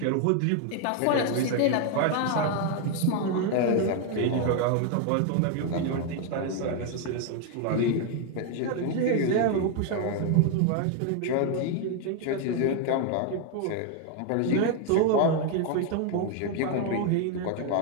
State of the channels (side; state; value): both; different; correlation 0.01